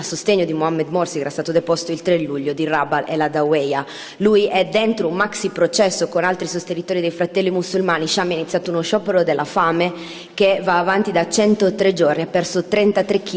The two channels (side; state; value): both; identical; correlation 1.00